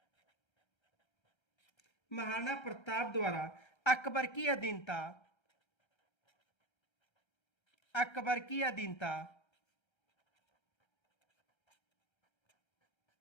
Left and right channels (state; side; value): late; right; 1.3 ms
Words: महाराणा प्रताप द्वारा अकबर की अधीनता अकबर की अधीनता